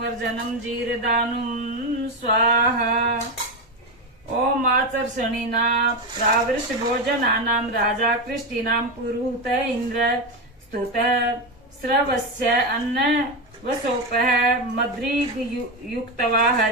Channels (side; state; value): both; normal; correlation 0.13